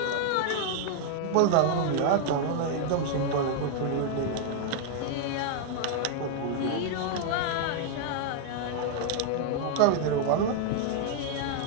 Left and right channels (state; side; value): different; both; correlation 0.00